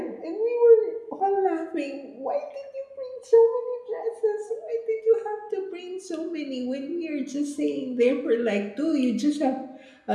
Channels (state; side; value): identical; both; correlation 1.00